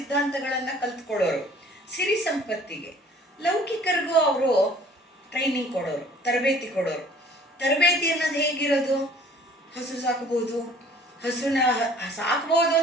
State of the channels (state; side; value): normal; both; correlation 0.53